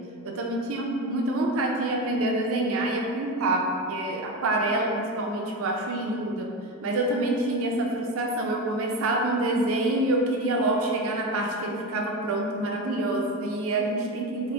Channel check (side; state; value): both; normal; correlation 0.20